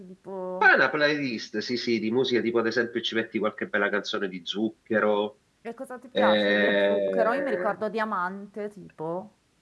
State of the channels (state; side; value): identical; both; correlation 1.00